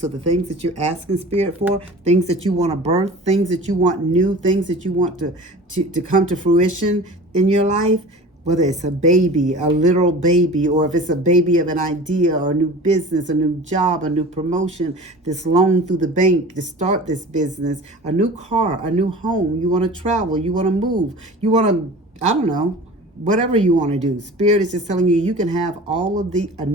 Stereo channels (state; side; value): normal; both; correlation 0.39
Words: the things that you're asking Spirit for, things that you want to birth, things that you want new, things that you want to come to fruition in your life, whether it's a baby, a literal baby, or if it's a baby of an idea or a new business, a new job, a new promotion, this loan through the bank to start this business, a new car, a new home, you want to travel, you want to move, you want to, I don't know, whatever you want to do. Spirit is just telling you, you can have all of a